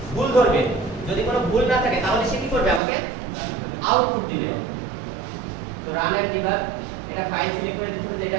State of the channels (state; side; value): drops out; left; at 2.8 s